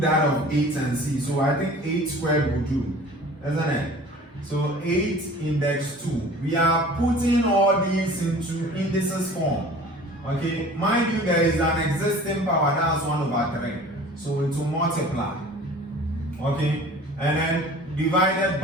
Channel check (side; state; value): both; normal; correlation 0.44